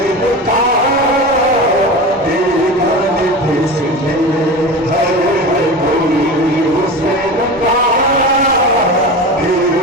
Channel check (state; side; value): normal; both; correlation 0.29